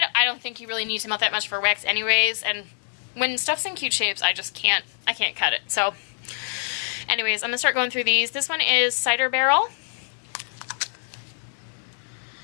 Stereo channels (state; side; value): silent; right; 57 dB below the other